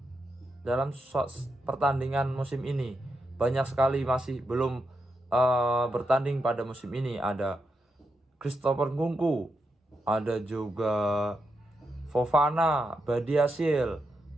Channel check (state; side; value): normal; both; correlation 0.84